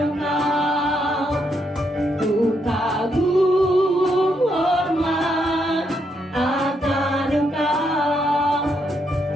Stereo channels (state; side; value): normal; both; correlation 0.78